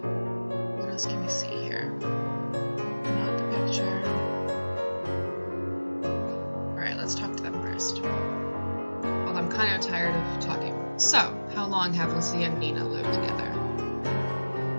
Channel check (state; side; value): inverted; both; correlation -1.00